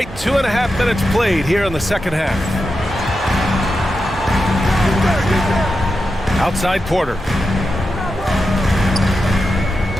2.5 minutes played here in the second half. Outside Porter.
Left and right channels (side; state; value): both; normal; correlation 0.89